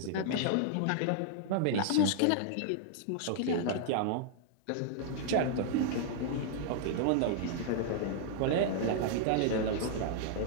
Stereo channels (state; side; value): different; both; correlation -0.01